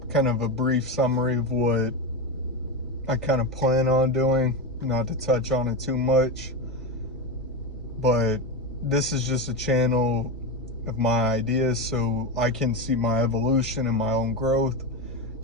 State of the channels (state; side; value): normal; both; correlation 0.16